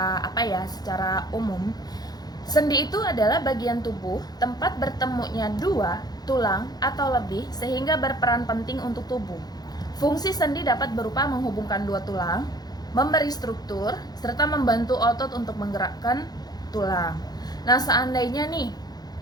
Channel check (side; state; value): right; late; 0.19 ms